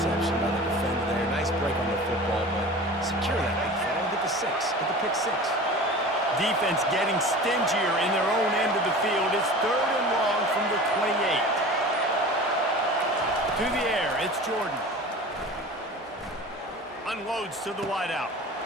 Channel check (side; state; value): both; normal; correlation 0.37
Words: by the defender there. Nice break on the football, but secure that big fella. Get the 6. Get the pick 6. Defense getting stingier in their own end of the field. It's 3rd and long from the 28. To the air, it's Jordan. Unloads to the wideout.